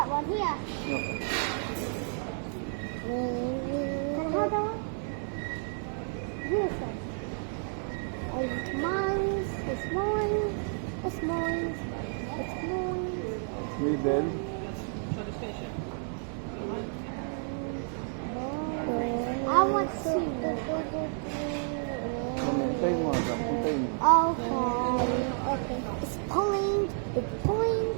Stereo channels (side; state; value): left; silent; 57 dB below the other